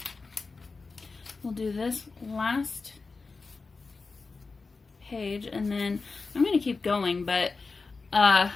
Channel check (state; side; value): quieter; right; 4.2 dB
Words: we'll do this last page, and then I'm going to keep going, but